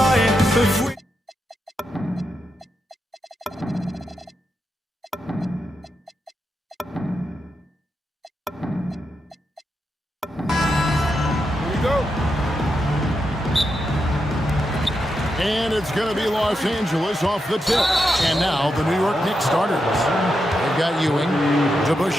if we And it's going to be Los Angeles off the tip. And now the New York Knicks starters. They've got Ewing.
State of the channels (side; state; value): both; normal; correlation 0.85